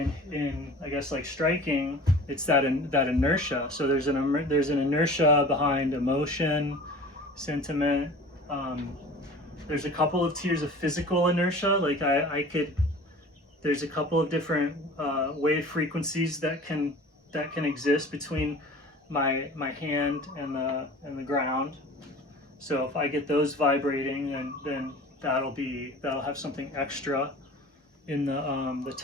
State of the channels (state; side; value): normal; both; correlation 0.41